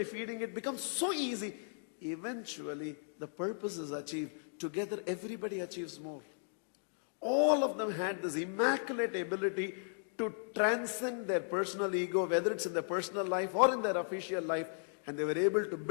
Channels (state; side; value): silent; right; digital silence